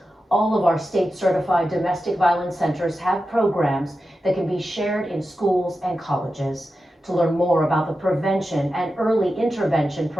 All of our state-certified domestic violence centers have programs that can be shared in schools and colleges. To learn more about the prevention and early intervention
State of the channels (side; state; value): both; normal; correlation 0.91